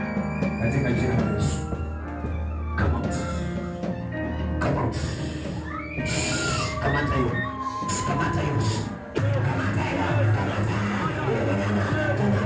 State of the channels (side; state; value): both; identical; correlation 1.00